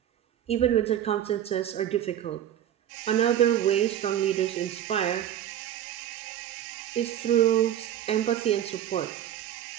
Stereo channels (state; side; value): quieter; left; 11.0 dB